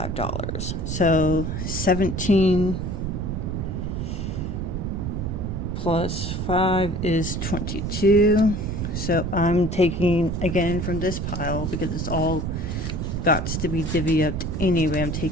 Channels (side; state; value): right; noise; rumble, 3 dB below the sound